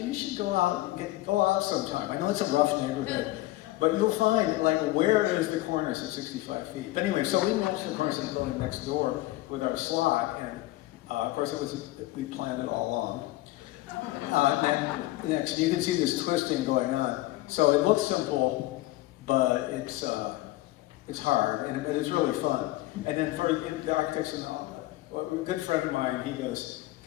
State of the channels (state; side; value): quieter; right; 17.8 dB